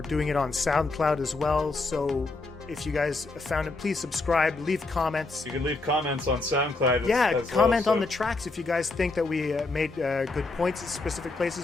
doing it on SoundCloud as well. So if you guys found it, please subscribe, leave comments. You can leave comments on SoundCloud. Yeah, comment on the tracks if you guys think that we made good points at specific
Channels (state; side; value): quieter; right; 3.4 dB